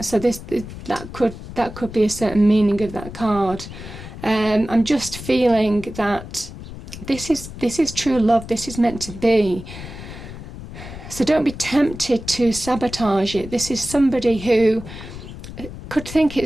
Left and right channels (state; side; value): noise; left; rumble, 12 dB below the sound